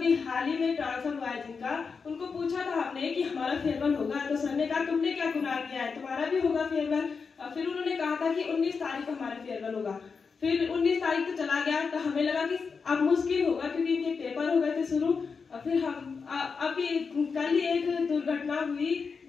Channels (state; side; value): quieter; right; 5.3 dB